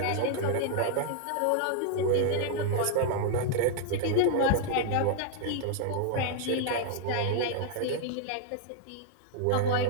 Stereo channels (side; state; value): both; different; correlation -0.01